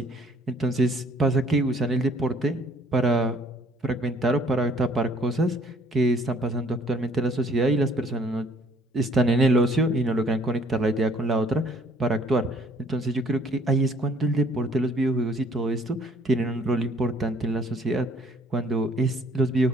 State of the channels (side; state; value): both; normal; correlation 0.59